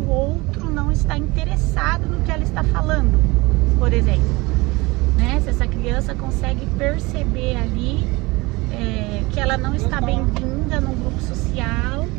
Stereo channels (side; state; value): left; quieter; 23.2 dB